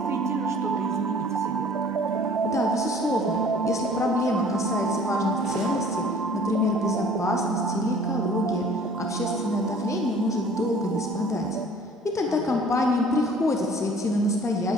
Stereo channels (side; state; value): both; normal; correlation 0.51